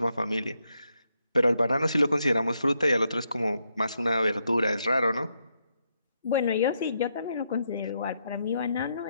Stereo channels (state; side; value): inverted; both; correlation -0.80